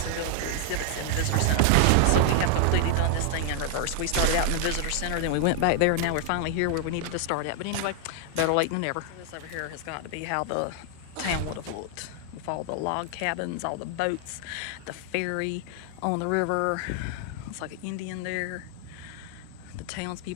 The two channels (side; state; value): both; different; correlation 0.00